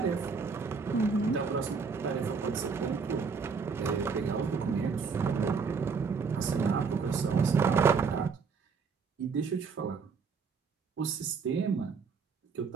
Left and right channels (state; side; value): quieter; left; 5.3 dB